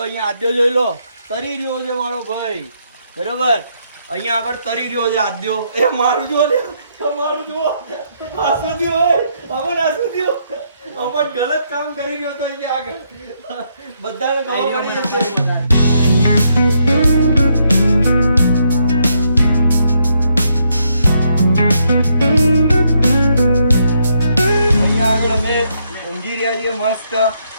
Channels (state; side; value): inverted; both; correlation -0.75